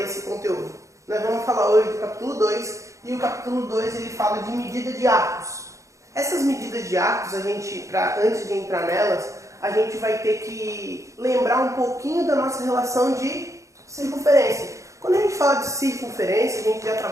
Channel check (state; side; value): late; left; 0.15 ms